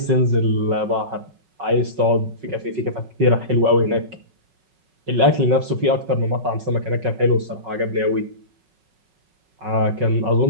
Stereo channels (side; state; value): left; late; 5.4 ms